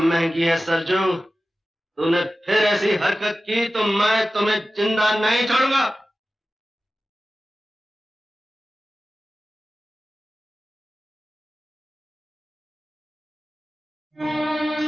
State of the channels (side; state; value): both; normal; correlation 0.95